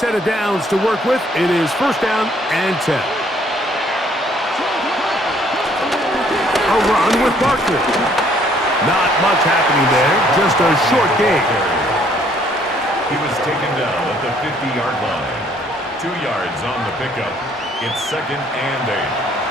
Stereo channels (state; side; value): normal; both; correlation 0.63